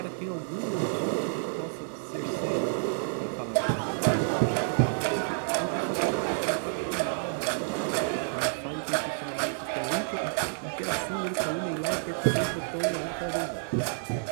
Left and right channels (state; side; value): silent; left; 55 dB below the other